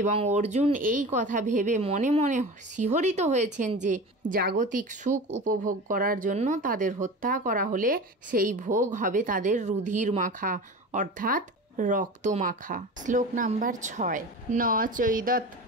অর্জুন এই কথা ভেবে মনে মনে শিহরিত হয়েছেন যে জাগতিক সুখ উপভোগ করার জন্য তাদের হত্যা করা হলে সেই ভোগ হবে তাদের রুধির মাখা অর্থাৎ রক্তমাখা। শ্লোক নাম্বার 6। ন চৈদৎ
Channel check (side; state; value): both; normal; correlation 0.32